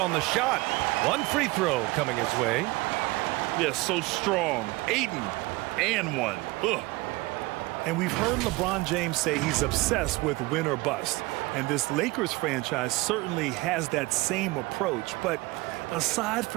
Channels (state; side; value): quieter; left; 22.3 dB